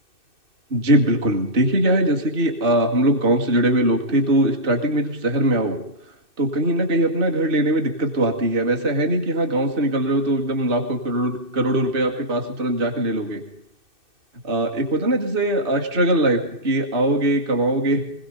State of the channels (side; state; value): left; late; 2.6 ms